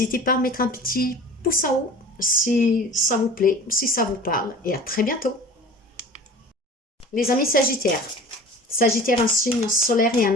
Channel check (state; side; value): normal; both; correlation 0.41